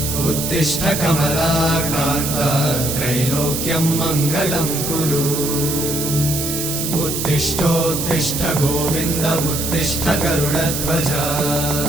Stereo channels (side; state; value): right; noise; hiss, 3 dB below the sound